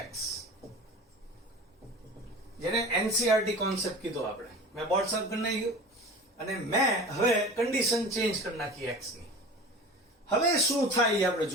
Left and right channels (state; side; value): normal; both; correlation 0.36